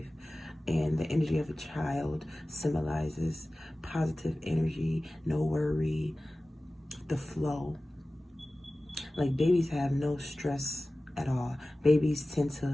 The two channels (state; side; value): normal; both; correlation 0.97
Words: and the energy of a child symbolizes positive energy, no worry, the flow. Like, babies have no stress at all. Babies tend